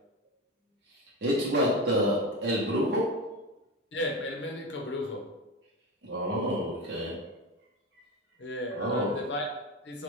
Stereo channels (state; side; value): normal; both; correlation 0.22